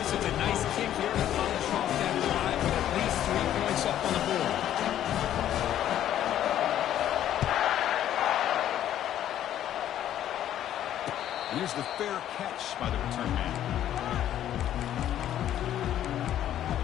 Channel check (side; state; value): right; quieter; 11.4 dB